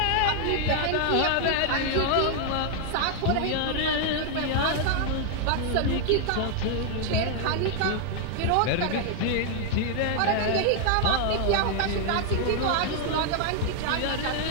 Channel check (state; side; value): different; both; correlation 0.00